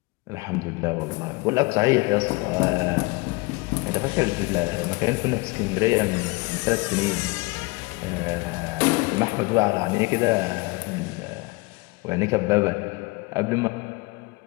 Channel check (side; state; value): right; quieter; 25.1 dB